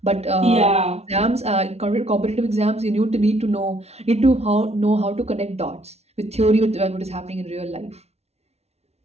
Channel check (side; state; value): left; late; 0.31 ms